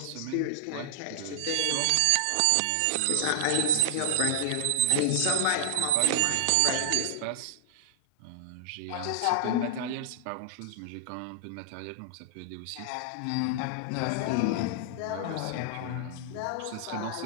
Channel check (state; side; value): different; both; correlation 0.00